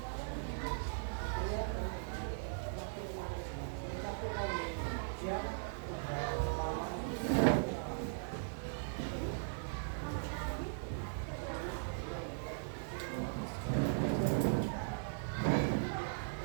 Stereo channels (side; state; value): left; silent; digital silence